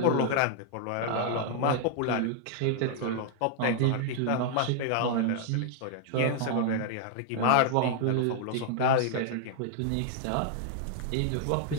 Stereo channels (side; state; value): both; different; correlation -0.01